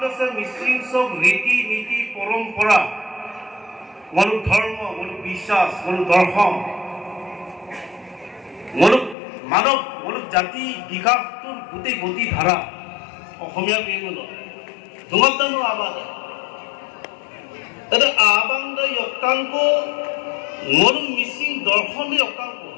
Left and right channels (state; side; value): drops out; right; at 9.2 s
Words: দে মিসিং সব রীতি নীতি পরম্পরা মুলুক ধর্ম মুলুক বিশ্বাস মুলুক দর্শন মুলুক মানব মুলুক জাতি বিকাশটোৰ গোটেই গতি ধাৰা অসমীয়া বিহুলো দুমতানো আবাদ এটা আবাংদ অকাংক মুলুক মিসিং দর্শনে অকাংক